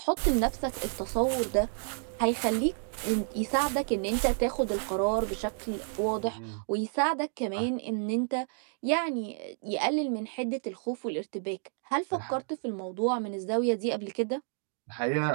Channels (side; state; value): left; silent; 58 dB below the other